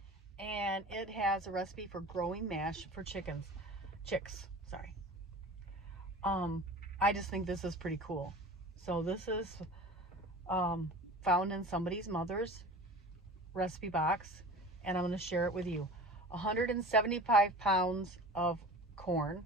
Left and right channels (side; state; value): both; normal; correlation 0.38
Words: And it has a recipe for growing mash for chicks. I just think this is pretty cool. So this is found in somebody's mother's recipe box, and I'm going to share it with you. 175 pounds of corn,